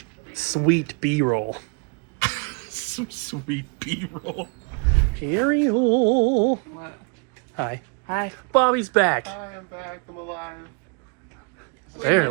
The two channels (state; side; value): quieter; left; 33.9 dB